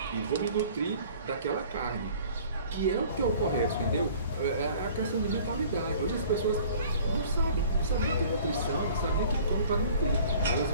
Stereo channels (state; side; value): inverted; both; correlation -0.49